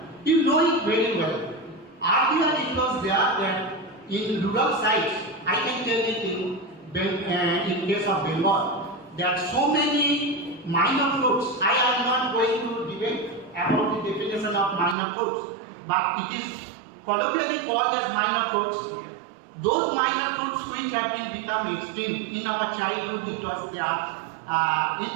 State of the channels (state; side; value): drops out; left; at 15.0 s